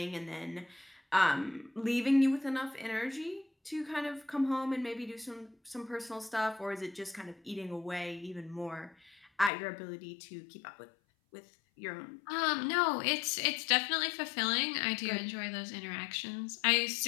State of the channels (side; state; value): right; drops out; at 9.5 s